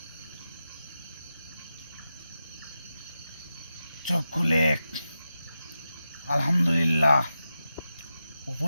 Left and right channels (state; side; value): inverted; both; correlation -0.91